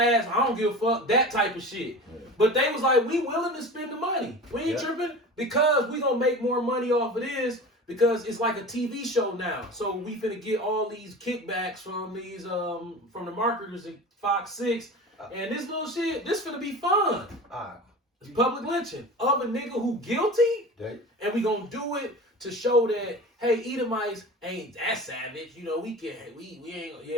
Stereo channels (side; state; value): both; normal; correlation 0.34